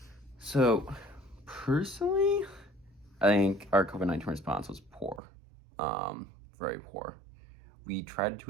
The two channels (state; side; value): drops out; left; at 5.2 s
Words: So, personally, I think our COVID-19 response was poor. Very poor. We tried a